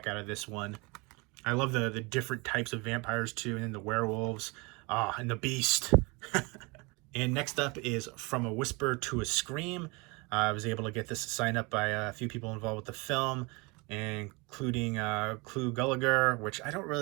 out of this one. I love the different types of vampires too, and then the werewolves, and the beast. And next up is From a Whisper to a Scream. I was able to get this signed up by a few people involved with the film, including Clu Gulager, which I don't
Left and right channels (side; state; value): left; quieter; 27.6 dB